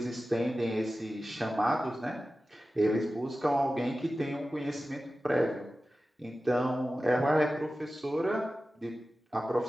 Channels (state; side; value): normal; both; correlation 0.95